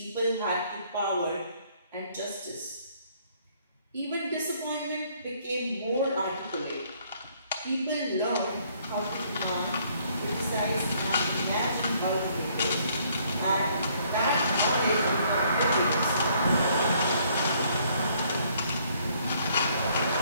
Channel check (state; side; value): inverted; both; correlation -0.65